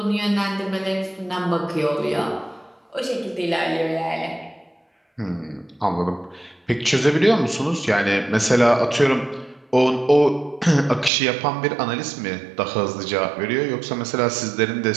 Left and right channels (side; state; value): left; drops out; at 11.1 s